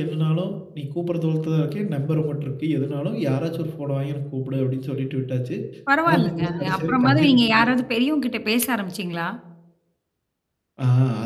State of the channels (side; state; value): both; identical; correlation 1.00